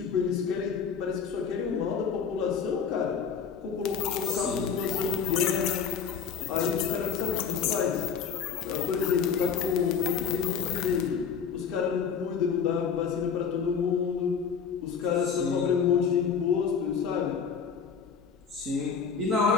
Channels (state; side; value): quieter; right; 6.6 dB